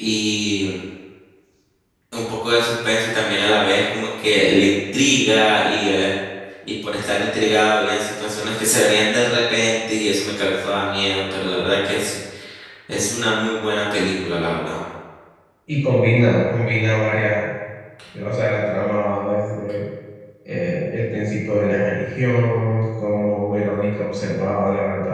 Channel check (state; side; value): identical; both; correlation 1.00